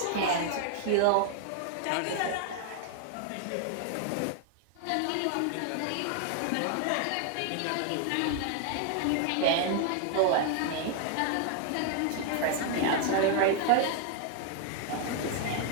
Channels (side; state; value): both; different; correlation 0.00